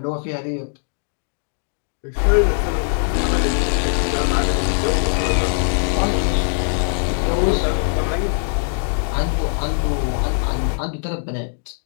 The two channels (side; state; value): right; silent; digital silence